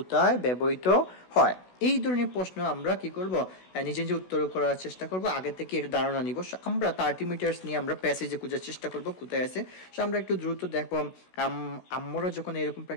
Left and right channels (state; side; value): late; right; 16 ms